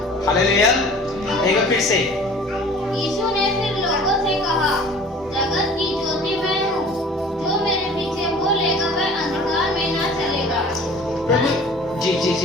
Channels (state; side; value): normal; both; correlation 0.46